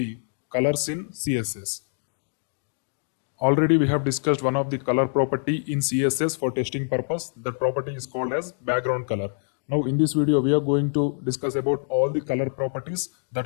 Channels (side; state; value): right; silent; digital silence